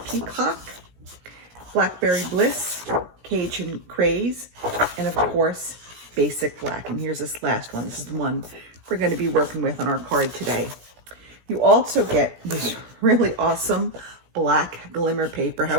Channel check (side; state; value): left; late; 17 ms